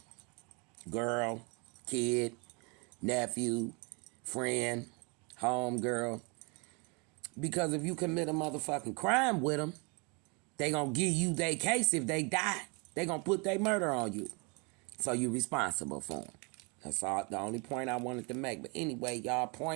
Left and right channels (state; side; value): quieter; left; 31.7 dB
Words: Girl, kid, nephew, friend, home girl. Because if you commit a motherfucking crime with them, they gonna give you their case if they die. They gonna put their murder on you. So you responsible for them. That's all, the only point I wanted to make. But anyway, y'all